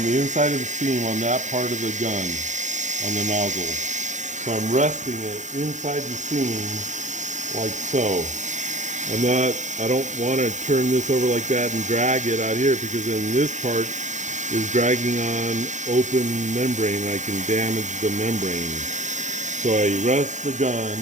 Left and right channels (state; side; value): late; left; 0.35 ms